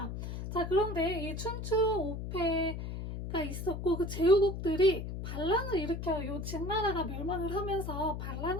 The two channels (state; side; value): noise; left; hum, 6 dB below the sound